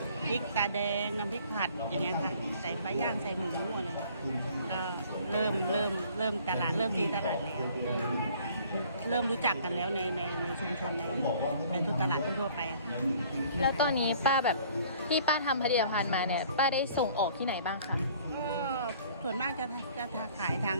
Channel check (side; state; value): both; inverted; correlation -0.54